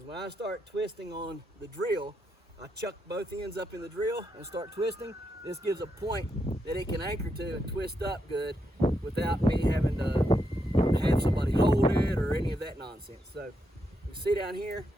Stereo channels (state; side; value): normal; both; correlation 0.82